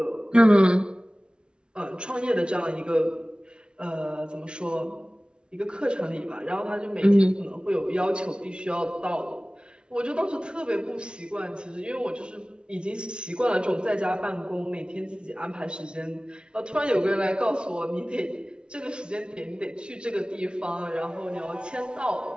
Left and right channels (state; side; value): late; left; 0.056 ms